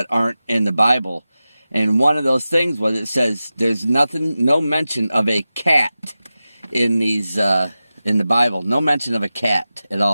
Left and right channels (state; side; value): inverted; both; correlation -0.94